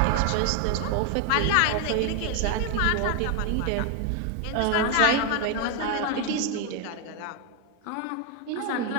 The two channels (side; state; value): both; different; correlation 0.01